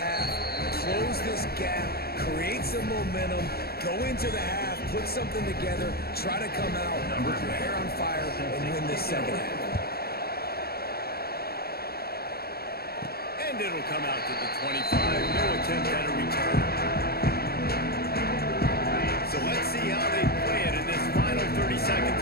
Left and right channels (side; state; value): right; late; 0.45 ms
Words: close this gap, create some momentum, go into the half, put something together, try to come out with your hair on fire and win this second half. And it'll come out to the 25. No attempt at a return. So let's see how they play it in this final 30 seconds